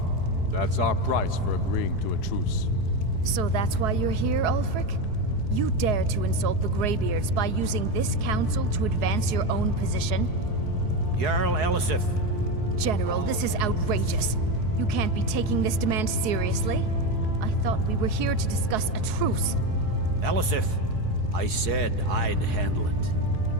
That's our price for agreeing to a truce. So that's why you're here, Ulfric? You dare to insult the Greybeards by using this council to advance your own position? Jarl Elisif. General, this is outrageous. You can't be taking this demand seriously. I thought we were here to discuss a truce. Elisif, I said I'd handle it.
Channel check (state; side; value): late; left; 4.7 ms